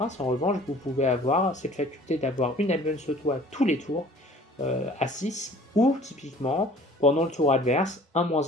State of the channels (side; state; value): both; normal; correlation 0.50